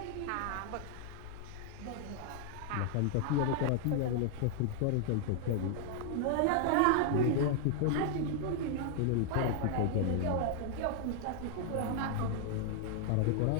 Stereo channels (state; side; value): different; both; correlation 0.00